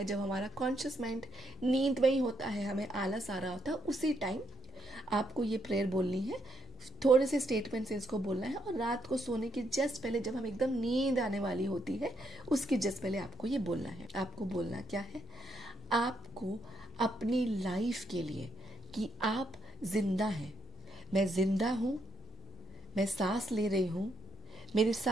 जब हमारा कॉन्शियस माइंड नींद में ही होता है, हमें आलस आ रहा होता है, उसी टाइम आपको ये प्रेयर बोलनी है। थोड़े से स्टेटमेंट्स इसको बोलना है, और रात को सोने के जस्ट पहले, जब हम एकदम नींद आने वाली होती है, उसके जस्ट पहले आपको ये बोलना है। आपको बोलना क्या है? आपको अपनी लाइफ के लिए कि आप जिंदा हैं, मैं जिंदा हूं, मैं सांस ले रही हूं, मेरे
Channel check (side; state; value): both; normal; correlation 0.76